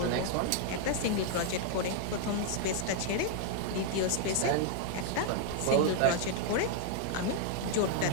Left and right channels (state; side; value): different; both; correlation -0.01